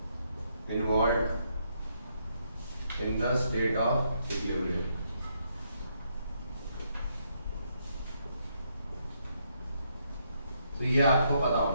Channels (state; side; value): inverted; both; correlation -0.76